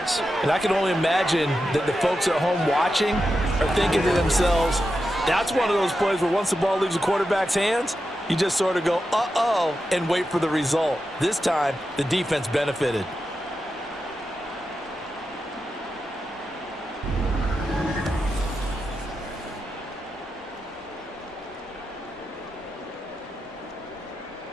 And I can only imagine that the folks at home watching are thinking to themselves, that's one of those plays where once the ball leaves the quarterback's hands, you just sort of go, uh-oh, and wait for the result. This time, the defense benefited.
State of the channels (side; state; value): both; normal; correlation 0.89